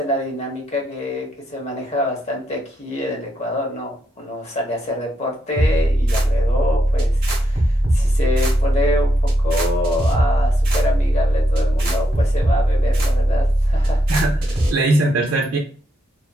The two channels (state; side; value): normal; both; correlation 0.80